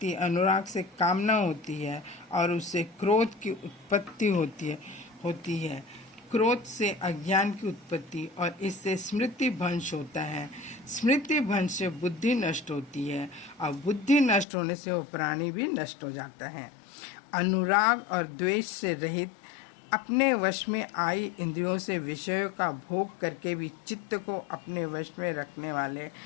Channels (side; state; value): right; drops out; at 14.5 s